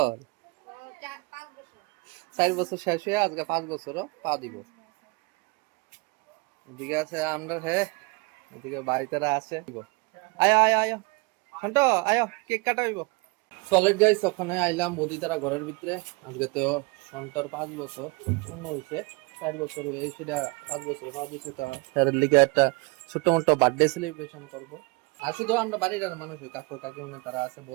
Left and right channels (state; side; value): quieter; left; 27.9 dB